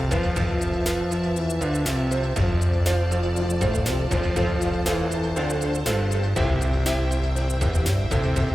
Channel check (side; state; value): both; normal; correlation 0.94